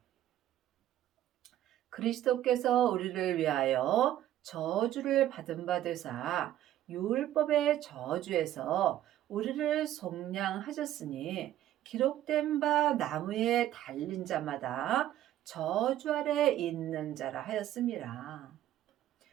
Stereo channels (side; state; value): left; quieter; 12.7 dB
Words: 그리스도께서 우리를 위하여 저주를 받은 바 되사 율법의 저주에서 우리를 속량하셨으니 기록된 바 나무에 달린 자마다 저주 아래 있는 자라 하였습니다.